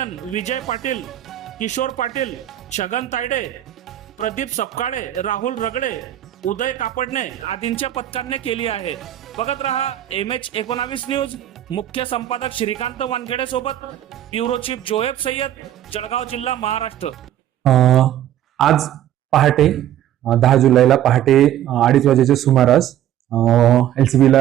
विजय पाटील, किशोर पाटील, छगन तायडे, प्रदीप सपकाळे, राहुल रगडे, उदय कापडणे आदींच्या पथकाने केली आहे। बघत रहा MH19 न्यूज। मुख्य संपादक श्रीकांत वानखेडे सोबत ब्युरो चीफ जोएब सय्यद, जळगाव जिल्हा, महाराष्ट्र। आज पहाटे 10 जुलैला पहाटे 2:30 वाजेच्या सुमारास LCB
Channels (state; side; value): quieter; left; 11.8 dB